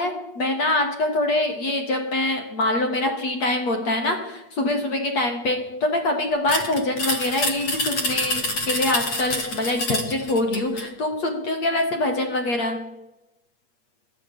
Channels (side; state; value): right; late; 8.5 ms